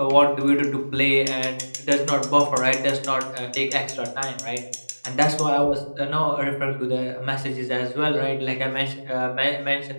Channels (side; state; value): both; inverted; correlation -1.00